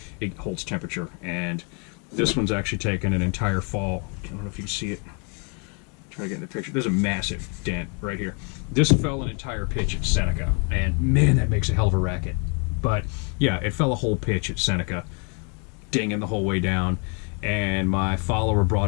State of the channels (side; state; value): right; quieter; 36.4 dB